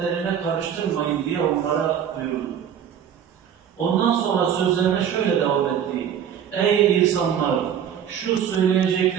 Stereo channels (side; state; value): left; quieter; 8.9 dB